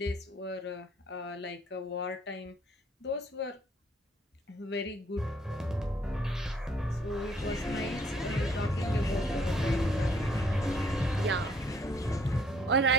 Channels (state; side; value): normal; both; correlation 0.64